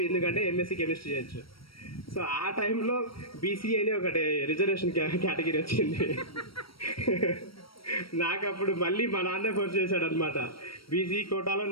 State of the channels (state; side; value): late; right; 0.75 ms